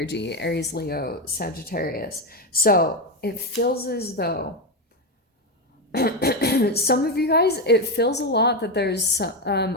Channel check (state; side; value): normal; both; correlation 0.11